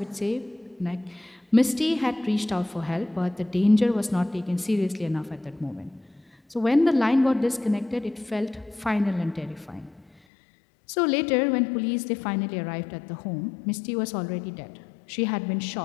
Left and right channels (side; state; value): right; drops out; at 10.1 s